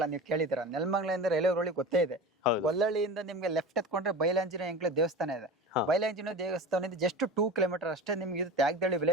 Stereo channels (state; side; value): normal; both; correlation 0.32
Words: ನೀವು ಕೇಳಿದಿರ, ನೆಲಮಂಗಲದಿಂದ ರೈಲ್ವೆ ರೋಡ್ ಗೊತ್ತೇ ಇದೆ. ಗೊಲ್ಲಳ್ಳಿಯಿಂದ ನಿಮ್ಗೆ ಲೆಫ್ಟ್ ಎತ್ಕೊಂಡ್ರೆ ಬಯಲಾಂಜನೇಯ ಎಂಕ್ಲೆ ದೇವಸ್ಥಾನ ಇದೆ. ಬಯಲಾಂಜನೇಯ ದೇವಸ್ಥಾನದಿಂದ ಜಸ್ಟ್ 2 ಕಿಲೋಮೀಟರ್ ಅಷ್ಟೇ ನಿಮ್ಗೆ ಇದು ತ್ಯಾಗದಳ್ಳಿ